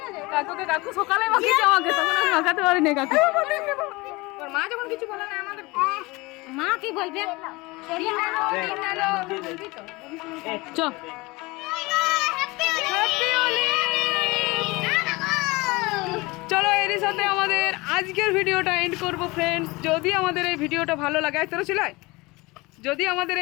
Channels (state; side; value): quieter; right; 23.3 dB